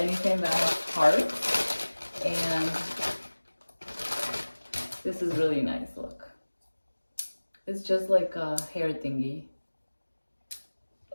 that has hearts. And this is really nice, look. It's just like a hair thingy.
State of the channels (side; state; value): both; inverted; correlation -1.00